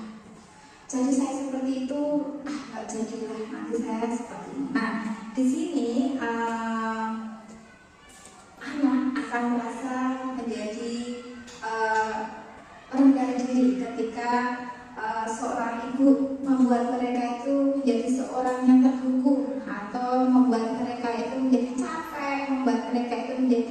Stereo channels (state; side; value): identical; both; correlation 1.00